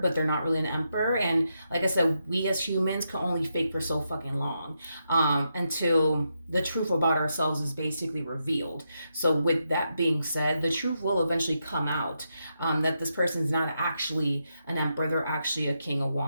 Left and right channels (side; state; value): both; inverted; correlation -0.84